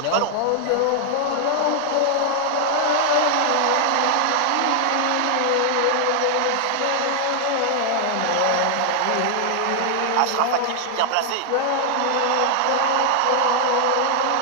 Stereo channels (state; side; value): different; both; correlation 0.00